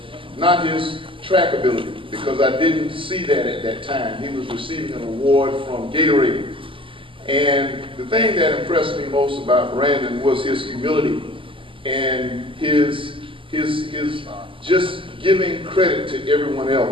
not his track ability, because I didn't see that at that time. He was receiving an award from Gatorade. And the thing that impressed me most about Brandon was his humility and his just giving credit to everyone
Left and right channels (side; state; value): left; late; 0.25 ms